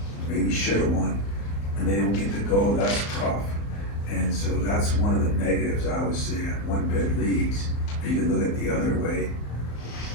maybe should have won, and they don't get to go. That's tough, and so that's one of the negatives I would say at one bid leagues. You can look at the other way.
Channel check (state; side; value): late; right; 34 ms